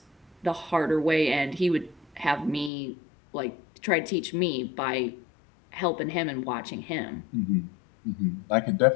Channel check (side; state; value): right; drops out; at 2.7 s